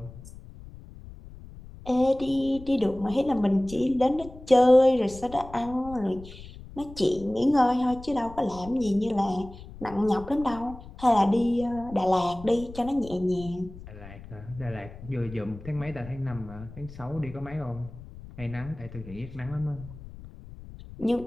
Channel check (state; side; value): noise; left; rumble, 16 dB below the sound